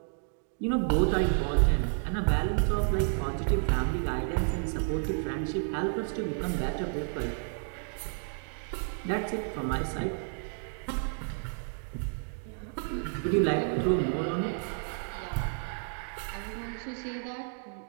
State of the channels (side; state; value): left; silent; 57 dB below the other